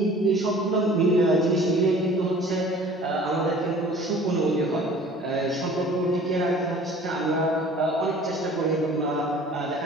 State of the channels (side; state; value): both; normal; correlation 0.48